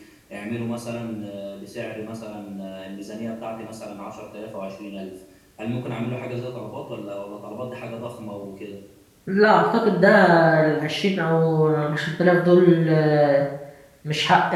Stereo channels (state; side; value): identical; both; correlation 1.00